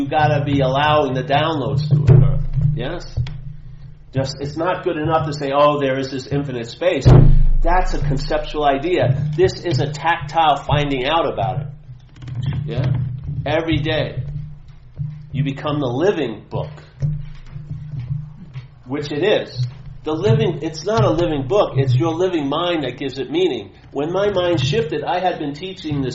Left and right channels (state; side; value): identical; both; correlation 1.00